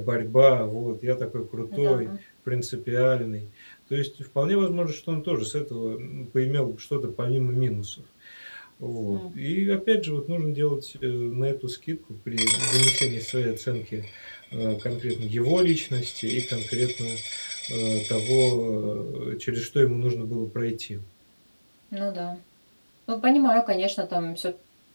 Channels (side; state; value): both; inverted; correlation -1.00